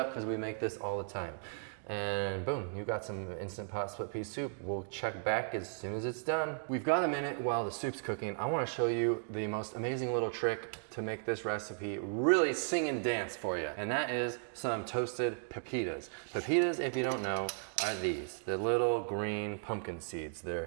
because we make this all the time. And boom, you got some Instant Pot split pea soup. We'll check back as soon as it's done. We've got a minute while the soup's cooking. I wanna show you the most amazing little trick to make this recipe really sing and dance for you. And that is some toasted pepitas. Pepitas, if you don't know, are these. The little green pumpkin seeds.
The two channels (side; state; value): left; silent; digital silence